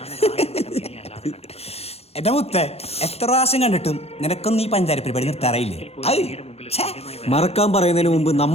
എന്റെ മുത്തേ, എത്ര പ്രാവശ്യം കണ്ടിട്ടും നിനക്കൊന്നും ഈ പഞ്ചാര പരിപാടി നിർത്താറായില്ലേ? മറക്കാൻ പറയുന്നതിന് മുമ്പ്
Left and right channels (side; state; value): right; late; 0.29 ms